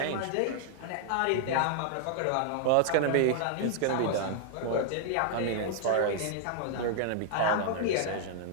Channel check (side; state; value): both; different; correlation -0.01